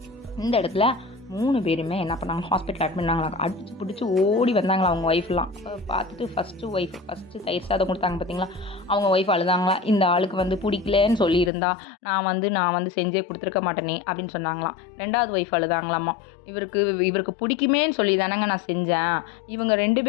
இந்த இடத்துல 3 பேருமே என்ன பண்ணாங்க, ஹாஸ்பிட்டல் அட்மிட் பண்ணாங்களா. அடிச்சு பிடிச்சி ஓடி வந்தாங்களா அவங்க ஒய்ஃப்லாம். பார்த்துட்டு ஃபஸ்ட்டு தயிர் சாதம் கொடுத்தாங்க பார்த்தீங்களா, அவங்க ஒய்ஃப் அழுதாங்களா. இந்த ஆளுக்கு வந்து பிடிக்கலன்னு சொல்லியிருந்தா நான் வந்து செஞ்சே கொடுத்துருக்க மாட்டேனே அப்படின்னு சொன்னாங்களாம். 2ஆவது ஒய்ஃப் அழுதாங்களாம்மா. இவருக்கு பிடிக்குமேன்னு சொல்லி தானேங்க நான் செஞ்சேன். இவங்க 2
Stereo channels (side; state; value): right; drops out; at 11.5 s